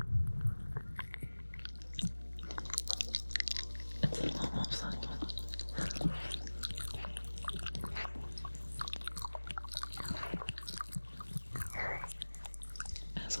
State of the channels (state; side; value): inverted; both; correlation -1.00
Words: it's a lot more subtle.